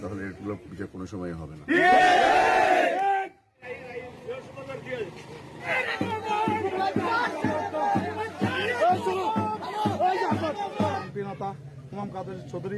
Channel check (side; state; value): both; identical; correlation 1.00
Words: তাহলে এগুলো বিচার কোনো সময় হবে না। ইমাম কাদের